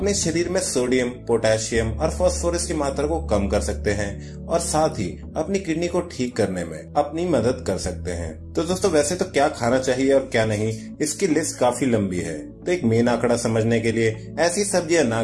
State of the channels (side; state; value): both; identical; correlation 1.00